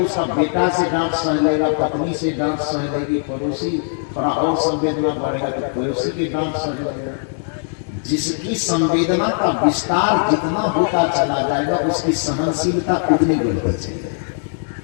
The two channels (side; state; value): right; silent; digital silence